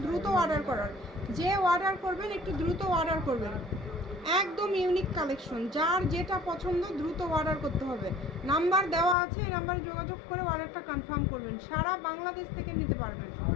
দ্রুত অর্ডার করার। যে অর্ডার করবেন একটু দ্রুত অর্ডার করবেন। একদম ইউনিক কালেকশন, যার যেটা পছন্দ দ্রুত অর্ডার করতে হবে। নাম্বার দেওয়া আছে, এই নাম্বারে যোগাযোগ করে অর্ডারটা কনফার্ম করবেন। সারা বাংলাদেশ থেকে নিতে পারবেন,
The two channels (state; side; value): drops out; right; at 9.2 s